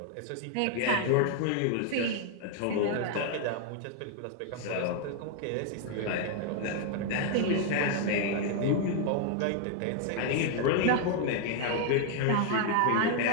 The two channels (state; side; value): different; both; correlation 0.00